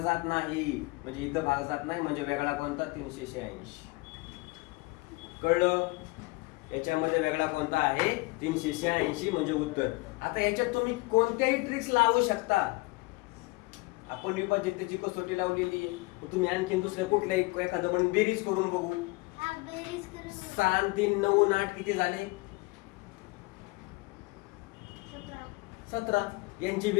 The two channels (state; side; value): quieter; right; 24.5 dB